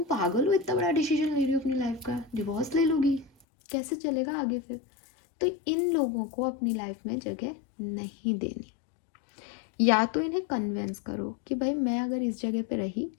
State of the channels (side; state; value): right; drops out; at 3.5 s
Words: पागल हो, इतना बड़ा डिसीजन ले रही हो अपनी लाइफ का, डिवोर्स ले लोगी, कैसे चलेगा आगे फिर? तो इन लोगों को अपनी लाइफ में जगह नहीं देनी। या तो इन्हें कन्वेंस करो कि भाई मैं अगर इस जगह पे रही